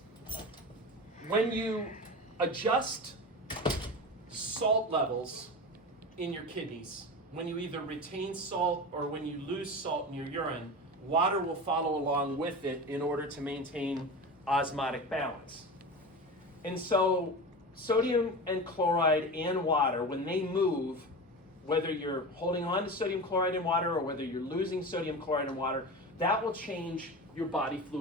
When you adjust salt levels in your kidneys, when you either retain salt or when you lose salt in your urine, water will follow along with it in order to maintain osmotic balance. And so sodium and chloride and water, when they move, whether you're holding on to sodium chloride and water or whether you're losing sodium chloride and water, that will change your body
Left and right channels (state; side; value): normal; both; correlation 0.28